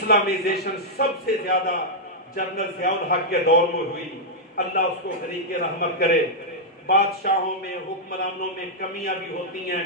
سب سے زیادہ جنرل ضیاء الحق کے دور میں ہوئی، اللہ اس کو غریق رحمت کرے۔ بادشاہوں میں، حکمرانوں میں کمیاں بھی ہوتی ہیں،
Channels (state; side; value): normal; both; correlation -0.06